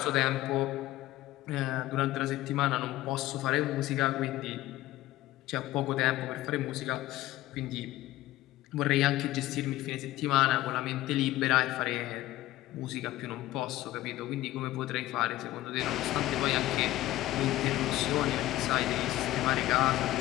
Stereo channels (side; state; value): right; quieter; 15.9 dB